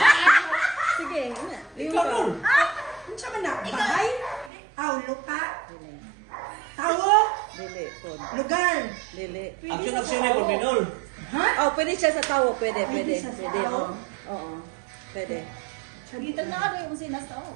Sige, ina. Ikaw nun. Sama na. Bahay. Aw, lupa. Tawo. Dili, kon. Lugar. Dili. Action na Minol. Ha? Oh, pwede siya sa tawo. Pwede. Pwede siya sa Pwede, tawo? Oo. Pwede. Sagitan na ano yung sinas tawo?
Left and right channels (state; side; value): drops out; left; at 4.5 s